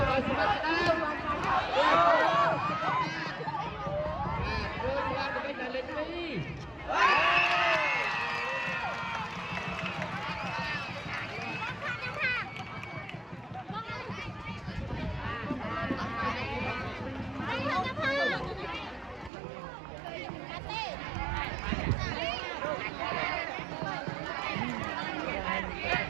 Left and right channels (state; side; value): drops out; left; at 19.3 s